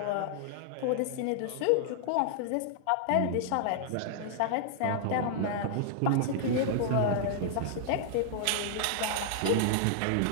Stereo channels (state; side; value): different; both; correlation -0.01